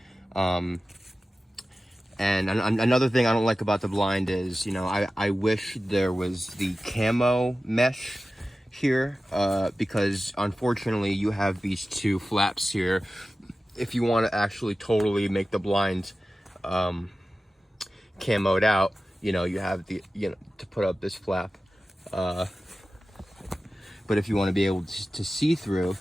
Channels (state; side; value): normal; both; correlation 0.95